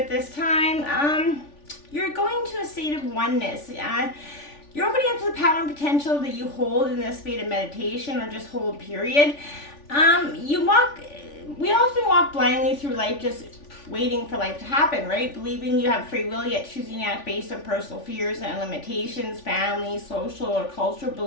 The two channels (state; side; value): late; right; 3.5 ms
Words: this time. You're going to a state of oneness. You're opening up to the power and potential that you hold in this state of meditation, or just hold, period. We often walk blindly through life, just waiting for life to happen, right? Believing you have free will, yet choosing to act based on personal fears and limitations, family, social, or cultural